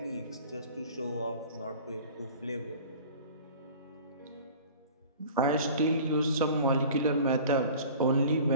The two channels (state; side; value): inverted; both; correlation -0.43